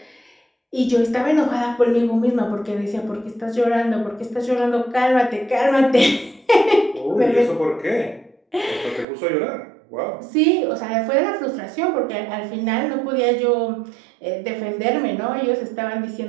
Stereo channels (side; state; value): left; drops out; at 9.1 s